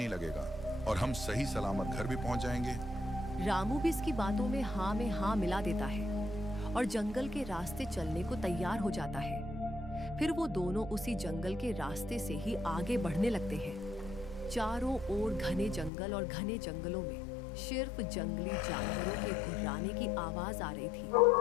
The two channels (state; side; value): drops out; right; at 15.9 s